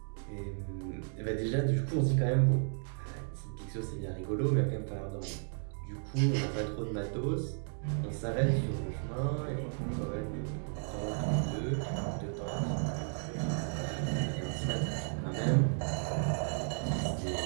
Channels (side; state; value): left; silent; 55 dB below the other